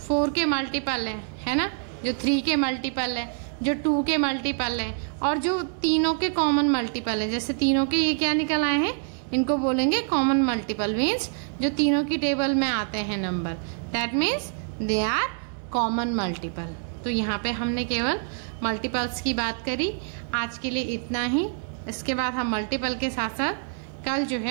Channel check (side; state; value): left; silent; digital silence